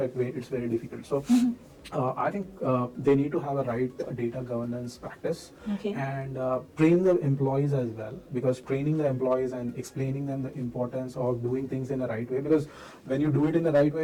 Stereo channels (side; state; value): both; identical; correlation 1.00